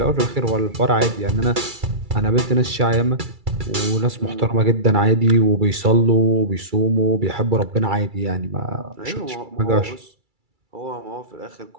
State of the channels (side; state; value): left; late; 2.3 ms